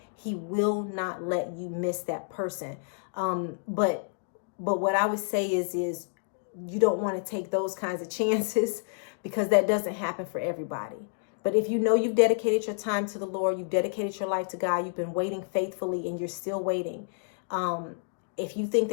he will not let you miss that person. But what I would say is you don't want to take those kinds of chances, because that doesn't happen for everybody. But if you know you've dedicated your time to the Lord, you've dedicated your life to God, you've been waiting faithfully and you're still waiting. If you think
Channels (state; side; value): silent; right; digital silence